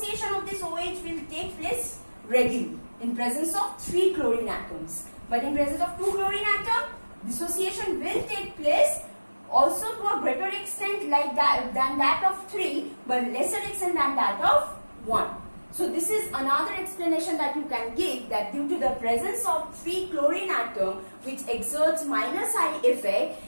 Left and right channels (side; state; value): both; inverted; correlation -1.00